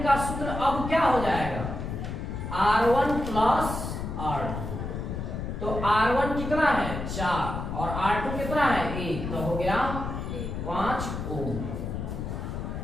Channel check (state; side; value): noise; left; rumble, 5 dB below the sound